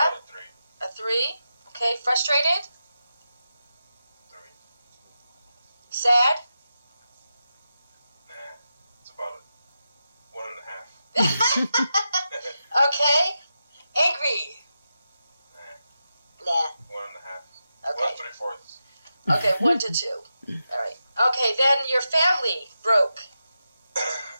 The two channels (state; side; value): inverted; both; correlation -0.89